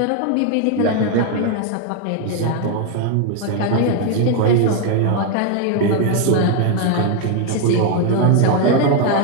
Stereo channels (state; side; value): different; both; correlation 0.01